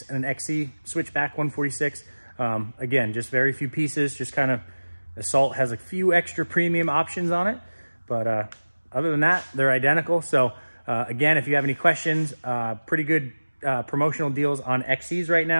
and an XC Switchback 146. Again, just very few pieces, just kind of, Assault has a few extra premium options on it, but other than that, they're identical. So again, if you have any questions, pretty good promotional deals on XCs right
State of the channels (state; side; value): inverted; both; correlation -1.00